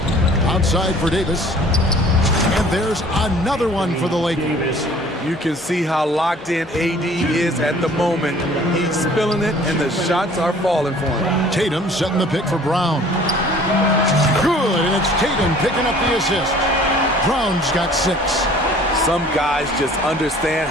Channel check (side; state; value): both; normal; correlation 0.51